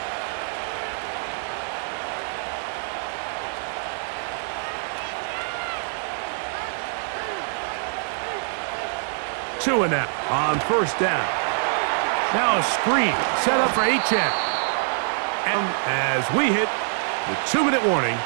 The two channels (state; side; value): silent; left; 61 dB below the other